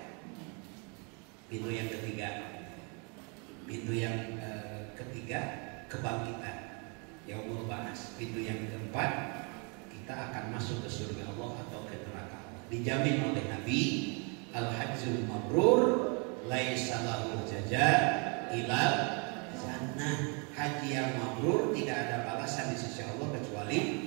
Pintu yang ketiga, kebangkitan, yaumul ba'ats. Pintu yang keempat, kita akan masuk ke surga Allah atau ke neraka Allah. Dijamin oleh Nabi, al-hajjul mabrur laisa lahu jazaa ilal jannah. Haji yang mabrur tidak ada balasan di sisi Allah kecuali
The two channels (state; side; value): quieter; left; 34.7 dB